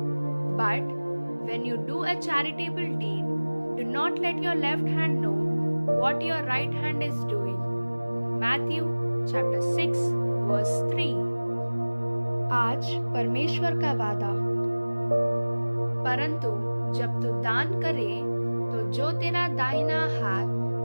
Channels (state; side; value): inverted; both; correlation -1.00